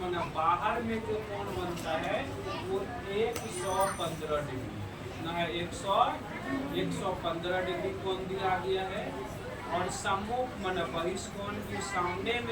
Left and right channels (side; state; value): both; identical; correlation 1.00